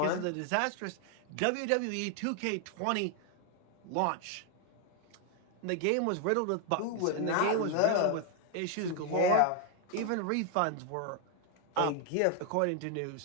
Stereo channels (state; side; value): different; both; correlation 0.00